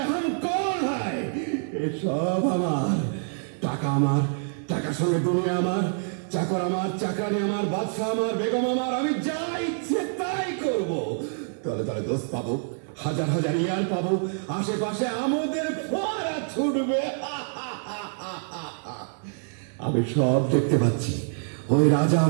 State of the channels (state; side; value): silent; left; digital silence